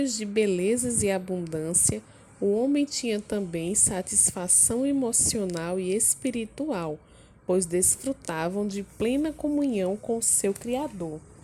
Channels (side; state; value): both; identical; correlation 1.00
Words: de belezas e abundância, o homem tinha também satisfação emocional e espiritual, pois desfrutavam de plena comunhão com seu Criador.